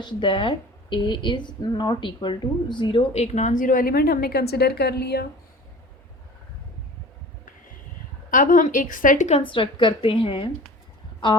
that a is not equal to zero. एक नॉन ज़ीरो एलिमेंट हमने कंसिडर कर लिया। अब हम एक सेट कंस्ट्रक्ट करते हैं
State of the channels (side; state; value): both; normal; correlation 0.40